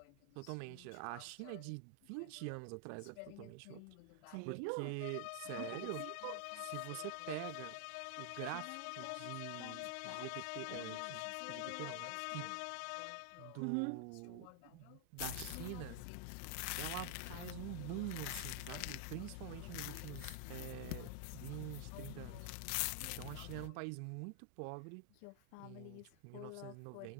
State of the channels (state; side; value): different; both; correlation 0.00